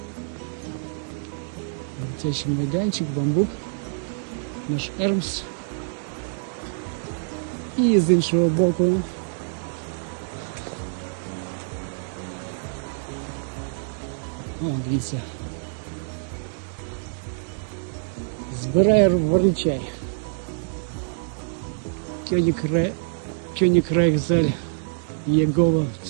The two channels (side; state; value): left; silent; 61 dB below the other